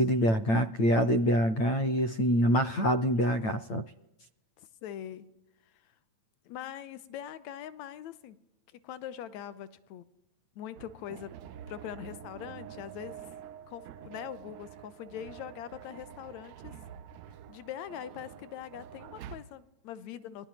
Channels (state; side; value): late; right; 9.0 ms